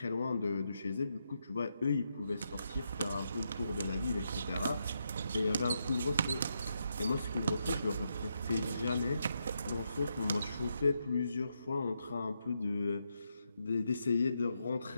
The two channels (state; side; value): inverted; both; correlation -0.82